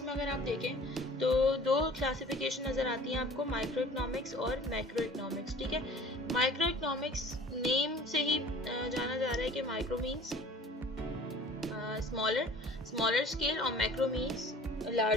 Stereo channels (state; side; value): normal; both; correlation 0.46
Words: में अगर आप देखें तो दो क्लासिफिकेशन नज़र आती हैं आपको, माइक्रो इकोनॉमिक्स और मैक्रो इकोनॉमिक्स। ठीक है, माइक्रो इकोनॉमिक्स नेम से ही जाना जा रहा है कि माइक्रो मीन्स स्मॉलर स्केल और मैक्रो मीन्स